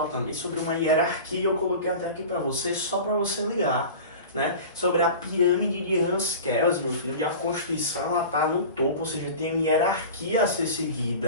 também sobre uma hierarquia, eu coloquei até aqui para você, só para você ligar, né? Sobre a pirâmide de Hans Kelsen, meu filho, onde a Constituição está no topo, ou seja, tem uma hierarquia a ser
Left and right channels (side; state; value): both; inverted; correlation -0.35